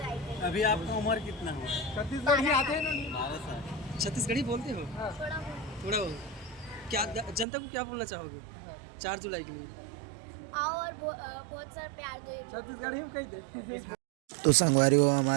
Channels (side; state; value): left; drops out; at 7.5 s